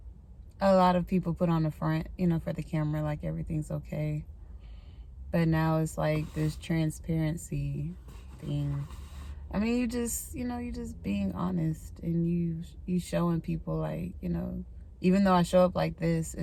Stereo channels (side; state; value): both; identical; correlation 1.00